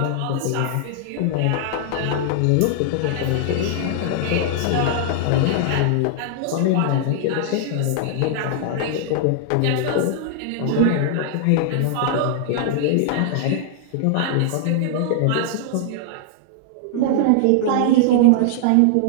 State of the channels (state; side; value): different; both; correlation -0.01